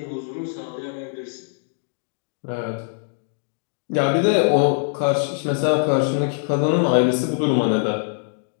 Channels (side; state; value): right; silent; digital silence